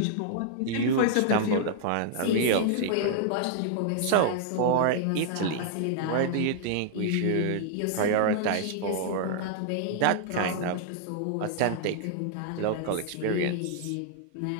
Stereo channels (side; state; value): both; different; correlation -0.01